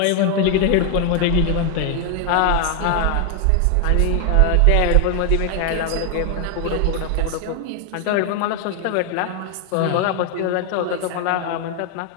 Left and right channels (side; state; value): both; different; correlation 0.01